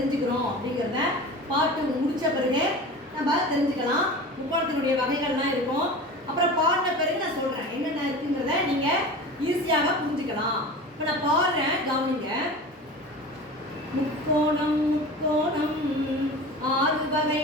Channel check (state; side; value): normal; both; correlation 0.34